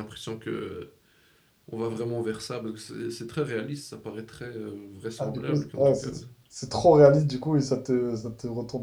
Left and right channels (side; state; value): both; identical; correlation 1.00